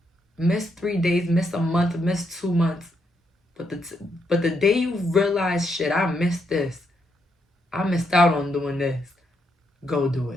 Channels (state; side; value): normal; both; correlation 0.78